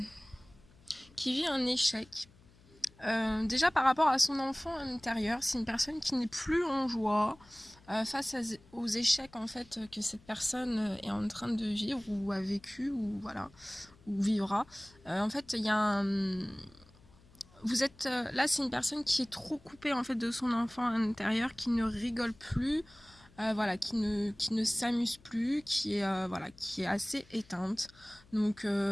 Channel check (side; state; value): left; noise; hum, 27 dB below the sound